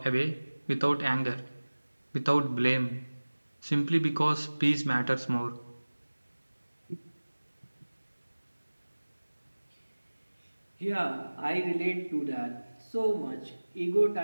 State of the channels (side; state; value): both; inverted; correlation -1.00